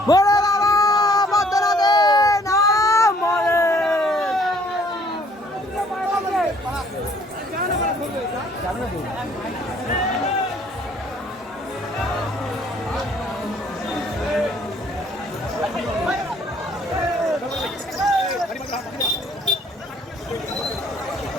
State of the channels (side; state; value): both; normal; correlation 0.60